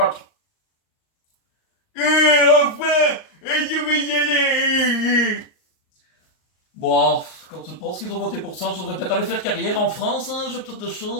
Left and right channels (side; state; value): right; late; 38 ms